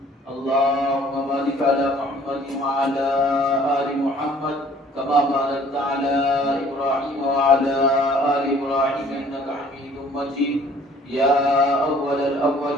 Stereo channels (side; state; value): both; normal; correlation 0.55